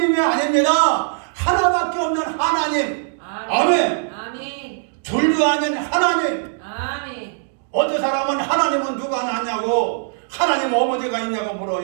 아닙니다. 하나밖에 없는 하나님. 아멘. 아멘. 둘도 아닌 하나님. 아멘. 어떤 사람은 하나님은 누가 낳냐고, 하나님 어머니가 있냐고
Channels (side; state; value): left; silent; digital silence